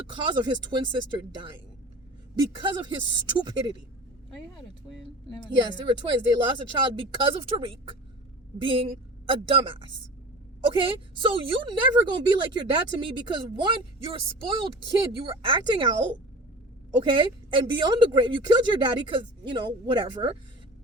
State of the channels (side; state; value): both; normal; correlation 0.37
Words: cause of his twin sister dying because of his stupidity. Oh, you had a twin? Yes, they were twins. They lost a child because of Tariq being a dumbass. Okay? So you never gonna be like your dad to me because, one, you're a spoiled kid. You were acting out. Okay? And beyond the grave, you killed your daddy because, whatever.